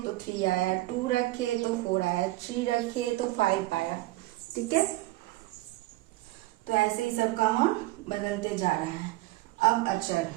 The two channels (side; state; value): left; quieter; 18.8 dB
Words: तो 3 आया, 2 रखे तो 4 आया, 3 रखे तो 5 आया, ठीक है। तो ऐसे ही सबका मान बदलते जा रहा है। अब अचर,